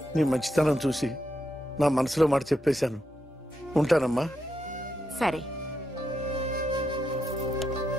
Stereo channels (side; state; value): both; normal; correlation 0.83